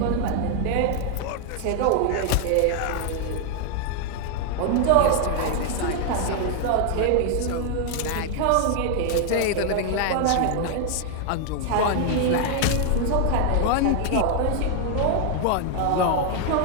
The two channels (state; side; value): different; both; correlation 0.00